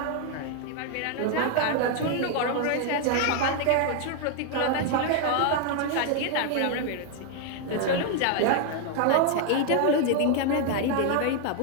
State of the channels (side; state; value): both; different; correlation 0.00